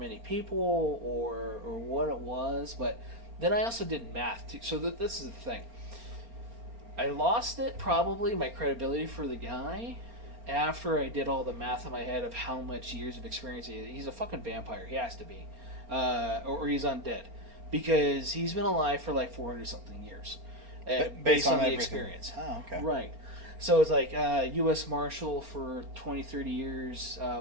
people or what it was. But then I also did math too. So this is the thing. I lost it, probably, my credibility for the guy, after I did all the math in my head of how much years of experience he is. He's a fucking vampire. He has to be. Or he's undead. Because he's been alive for like 400-something years. Based on the everything. experience. Oh, okay. Right. So it's like U.S. Marshal for 20, 30 years,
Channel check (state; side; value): late; left; 4.3 ms